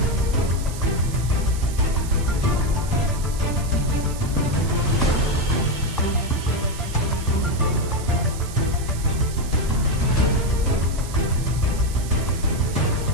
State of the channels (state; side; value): noise; right; hiss, 14 dB below the sound